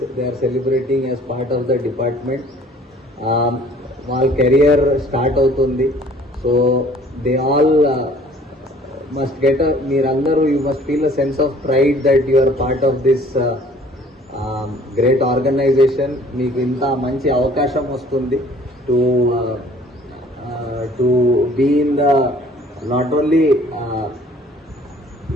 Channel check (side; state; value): both; normal; correlation 0.54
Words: are celebrating as part of the department. వాళ్ళ career start అవుతుంది. So they all must get మీరందరూ you must feel a sense of pride that you are part of this great organisation. మీకు ఇంత మంచి అవకాశం వస్తుంది to be in the not only